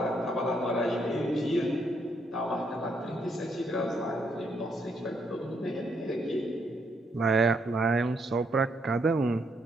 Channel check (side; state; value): both; normal; correlation 0.74